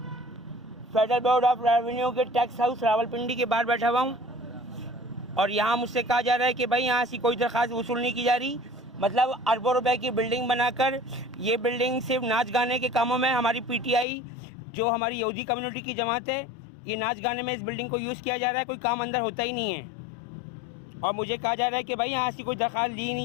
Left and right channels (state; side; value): drops out; right; at 14.1 s